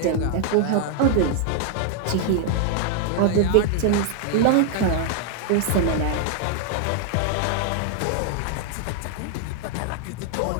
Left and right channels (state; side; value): different; both; correlation 0.00